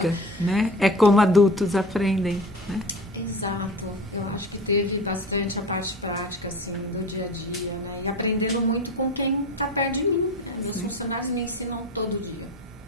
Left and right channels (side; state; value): both; normal; correlation 0.33